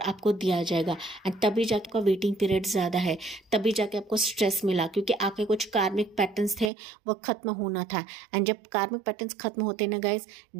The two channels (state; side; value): drops out; left; at 6.7 s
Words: दिया जाएगा एंड तभी जाके आपका वेटिंग पीरियड ज़्यादा है, तभी जाके आपको स्ट्रेस मिला क्योंकि आपके कुछ कार्मिक पैटर्न्स थे वो ख़त्म होना था। एंड जब कार्मिक पैटर्न्स ख़त्म होते हैं ना गाइस,